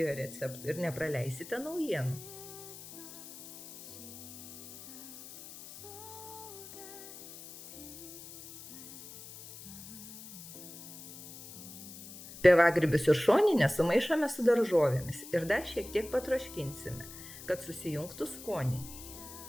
receptų ir nepraleisite naujienų. Pievagrybius ir šoninę sumaišome su daržovėmis ir dar šiek tiek patroškinsime, kad susijungtų skoniai.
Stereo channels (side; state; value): left; noise; hiss, 14 dB below the sound